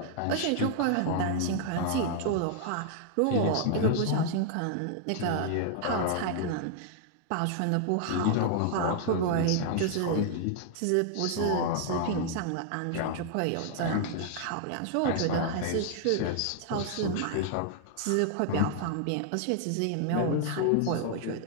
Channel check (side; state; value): both; different; correlation 0.00